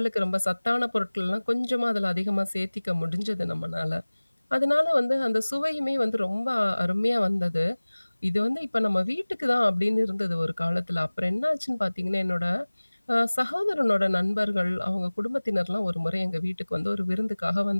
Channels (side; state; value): both; inverted; correlation -1.00